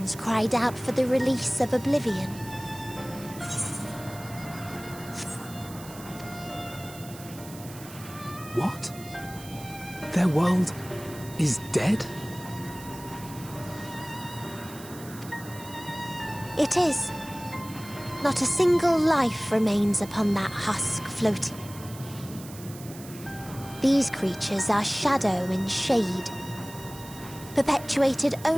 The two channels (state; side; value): noise; right; hiss, 17 dB below the sound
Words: cried out for the release of oblivion. What? Their world is dead? It is. Not a single life remains upon that husk floating. These creatures are shadow and shade, perpetuated